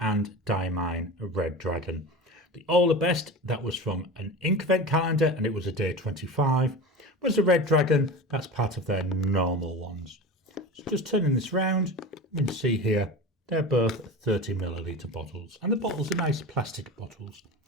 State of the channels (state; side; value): normal; both; correlation 0.30